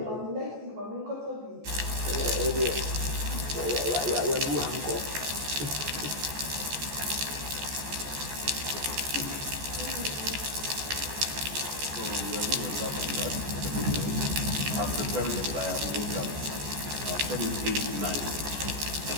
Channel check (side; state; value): left; late; 14 ms